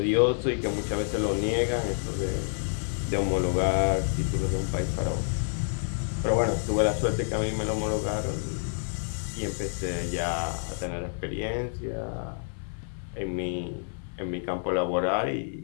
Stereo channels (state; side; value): silent; right; 57 dB below the other